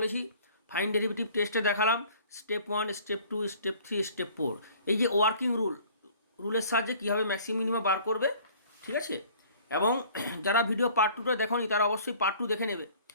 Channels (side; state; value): both; inverted; correlation -0.52